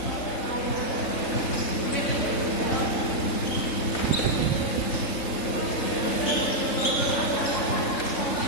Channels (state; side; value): late; right; 3.7 ms